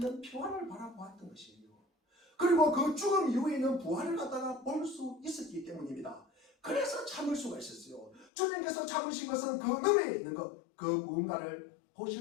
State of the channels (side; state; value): right; drops out; at 8.2 s